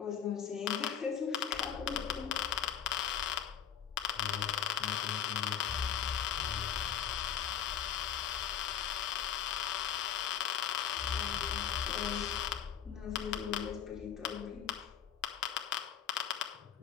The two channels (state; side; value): quieter; right; 9.2 dB